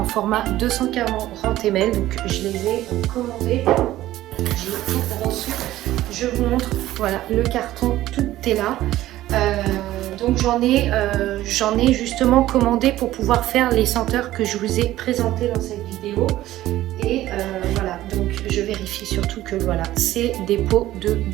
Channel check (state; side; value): quieter; left; 14.9 dB